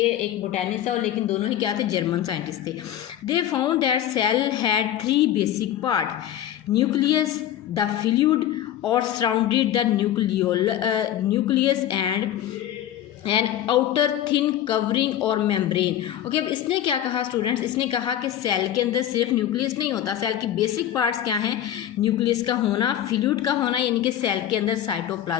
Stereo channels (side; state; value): right; quieter; 11.4 dB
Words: एक बोटैनिस्ट था लेकिन दोनों ही क्या थे, जर्मन साइंटिस्ट थे। They found that cell had 3 basic part, nucleus, the fluid और surrounded the nucleus and an outer thin covering और मेम्ब्रेन। ओके, अब इसने क्या कहा स्टूडेंट्स, इसने कहा कि सेल के अंदर सिर्फ न्यूक्लियस नहीं होता, सेल की बेसिक पार्ट्स क्या हैं, न्यूक्लियस का होना, फ्लूइड का होना यानी कि सेल के अंदर